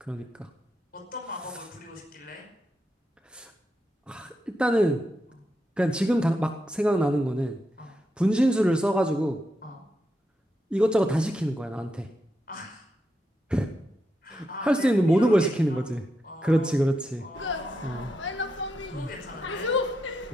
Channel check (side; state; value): both; normal; correlation 0.84